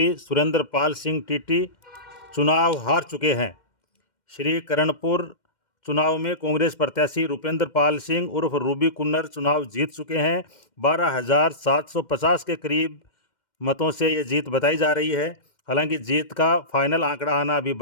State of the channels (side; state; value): right; late; 2.1 ms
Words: सुरेंद्र पाल सिंह टीटी चुनाव हार चुके हैं। श्री करणपुर चुनाव में कांग्रेस प्रत्याशी रुपेंद्र पाल सिंह उर्फ रूबी कुन्नर चुनाव जीत चुके हैं। 12,750 के करीब मतों से ये जीत बताई जा रही है। हालांकि जीत का फाइनल आंकड़ा आना अभी